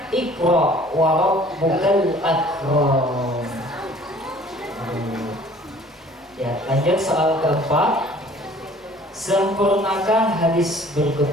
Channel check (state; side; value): normal; both; correlation 0.52